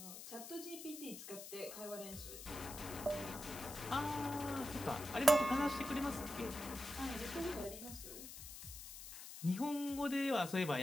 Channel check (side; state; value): left; noise; hiss, 11 dB below the sound